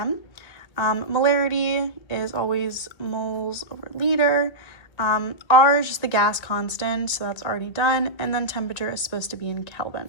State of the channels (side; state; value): right; late; 1.9 ms